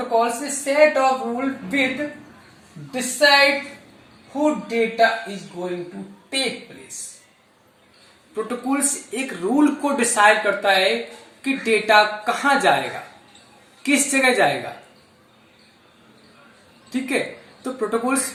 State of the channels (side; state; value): both; identical; correlation 1.00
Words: is set of rule with decide who data is going to take place. Protocols एक रूल को डिसाइड करता है कि डेटा कहां जाएगा, किस जगह जाएगा। ठीक है, तो प्रोटोकॉल्स